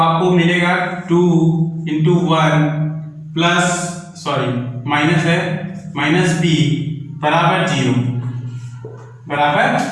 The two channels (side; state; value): both; identical; correlation 1.00